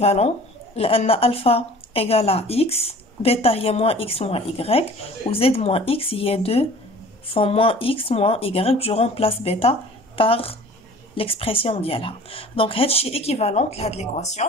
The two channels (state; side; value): normal; both; correlation 0.47